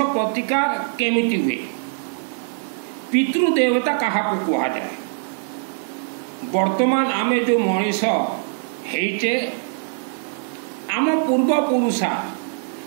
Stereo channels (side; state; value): left; silent; 64 dB below the other